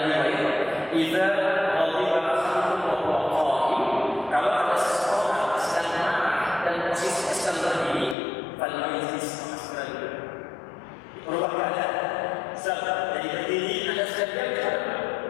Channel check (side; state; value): right; drops out; at 8.2 s